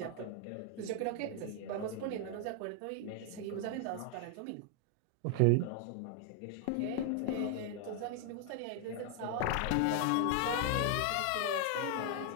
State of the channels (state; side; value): different; both; correlation 0.00